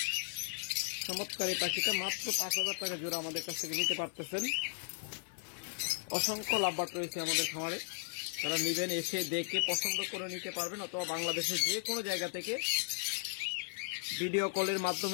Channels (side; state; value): right; silent; digital silence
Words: চমৎকার এই পাখিটা মাত্র ৫,০০০ টাকা জোড়া আমাদের কাছ থেকে নিতে পারতেছেন। অসংখ্য লাভবার্ড রয়েছে আমাদের খামারে, যারা নেবেন এসে দেখে পছন্দ করে নিতে পারবেন, অথবা বাংলাদেশের যে কোনো জায়গা থেকে ভিডিও কলের